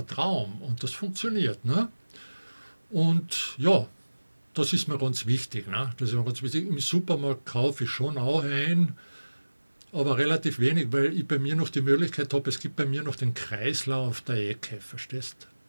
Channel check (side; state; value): both; inverted; correlation -1.00